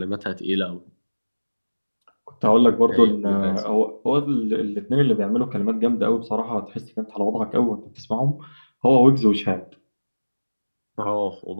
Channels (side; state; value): both; inverted; correlation -1.00